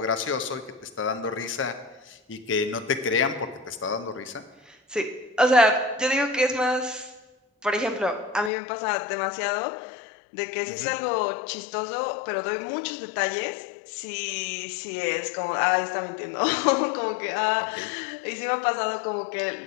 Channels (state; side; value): drops out; right; at 8.5 s